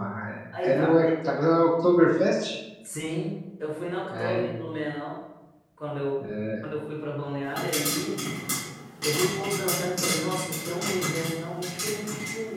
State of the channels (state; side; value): identical; both; correlation 1.00